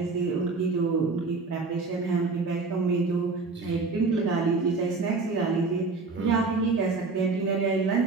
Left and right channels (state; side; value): quieter; left; 4.0 dB